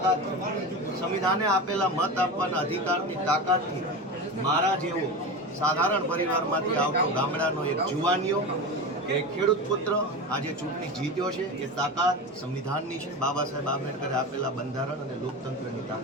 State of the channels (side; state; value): both; normal; correlation 0.25